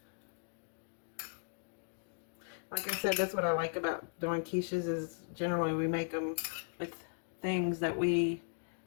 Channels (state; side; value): silent; right; digital silence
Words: Like I said, that's what I like about doing quiches, is generally we make them with things that we